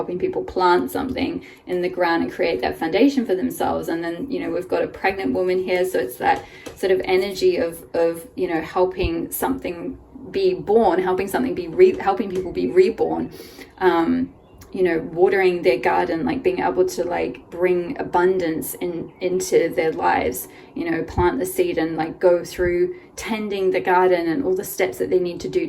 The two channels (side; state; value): both; identical; correlation 1.00